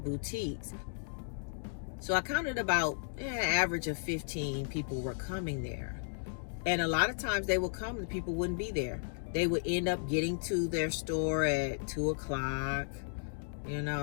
So I counted about an average of 15 people were coming there. And a lot of times they would come and people wouldn't be there. They would end up getting to their store at 2 o'clock,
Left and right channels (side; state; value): right; silent; digital silence